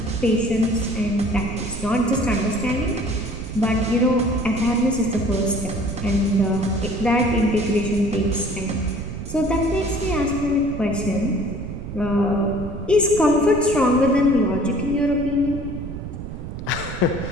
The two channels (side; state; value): right; noise; rumble, 8 dB below the sound